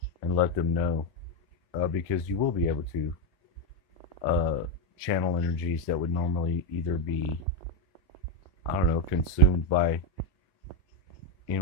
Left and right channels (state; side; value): normal; both; correlation 0.04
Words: and let them know, because you will be able to channel energies that would normally either be, I don't know, consumed by